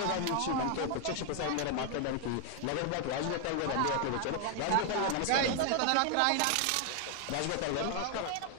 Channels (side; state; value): both; different; correlation 0.00